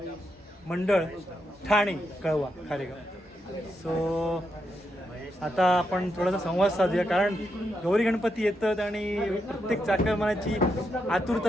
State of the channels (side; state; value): both; normal; correlation 0.82